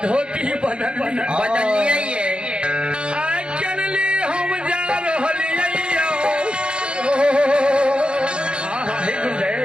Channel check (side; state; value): left; late; 0.054 ms